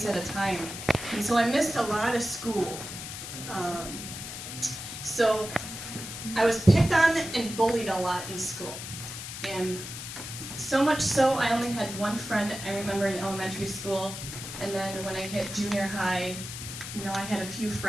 at a time. And so I missed a lot of school. So I was picked on and bullied a lot in school. And so much so, I only had one friend I remember in elementary school. And then when I hit junior high, I had a few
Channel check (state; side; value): noise; left; hiss, 9 dB below the sound